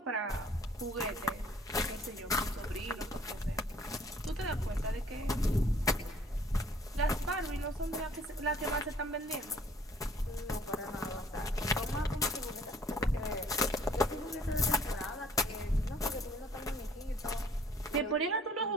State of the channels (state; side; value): normal; both; correlation 0.57